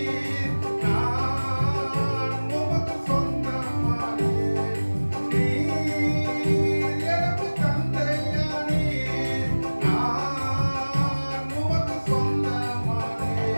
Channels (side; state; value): both; inverted; correlation -1.00